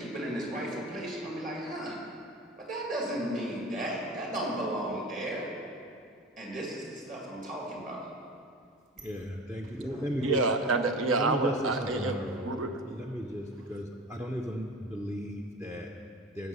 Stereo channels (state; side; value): normal; both; correlation 0.34